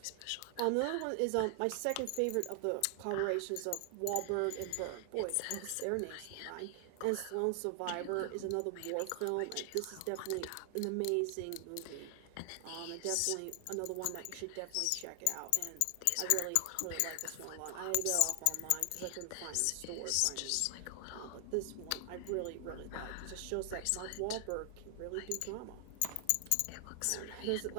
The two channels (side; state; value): both; different; correlation 0.00